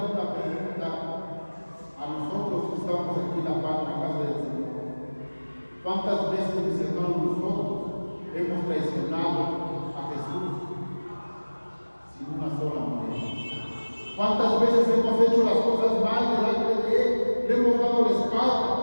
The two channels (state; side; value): inverted; both; correlation -1.00